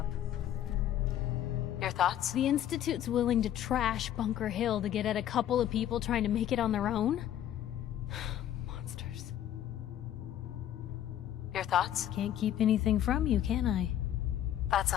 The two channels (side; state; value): right; quieter; 11.3 dB